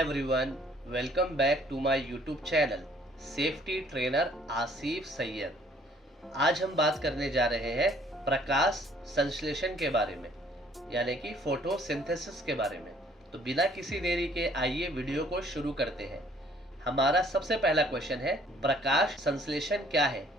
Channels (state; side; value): normal; both; correlation 0.60